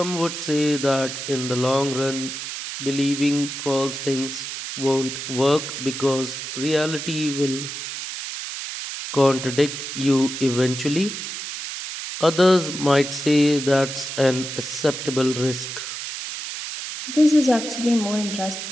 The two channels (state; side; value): noise; right; hiss, 7 dB below the sound